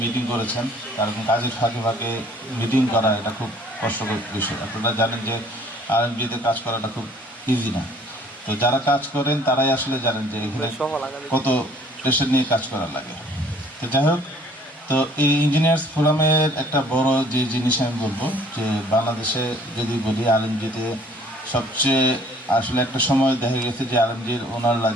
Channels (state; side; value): normal; both; correlation 0.56